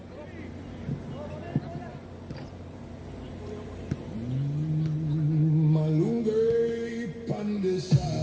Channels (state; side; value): identical; both; correlation 1.00